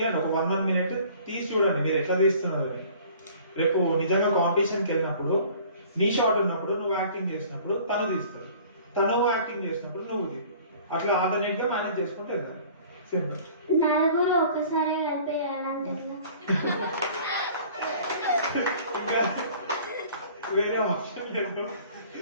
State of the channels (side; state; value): both; inverted; correlation -0.50